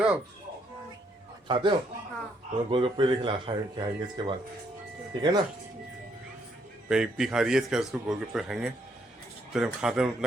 आप? खाते हो? तो गोलगप्पे लेके खाएंगे इसके बाद, ठीक है ना। इप्पी खा रही है, इसके बाद उसको गोलगप्पे खाएंगे। तो जब खाते हैं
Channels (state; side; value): normal; both; correlation 0.72